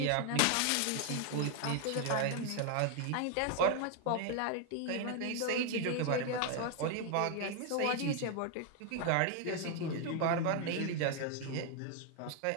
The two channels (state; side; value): different; both; correlation 0.00